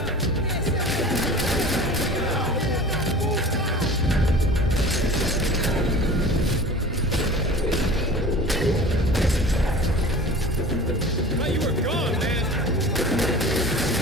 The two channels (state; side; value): normal; both; correlation 0.40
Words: You were gone, man!